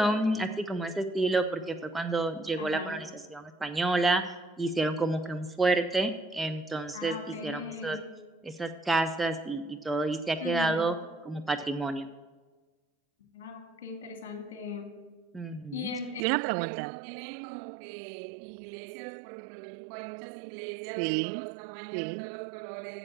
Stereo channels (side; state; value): left; drops out; at 16.2 s